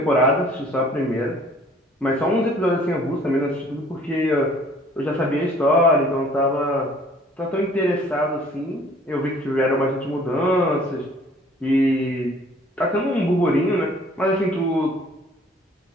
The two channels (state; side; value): normal; both; correlation 0.55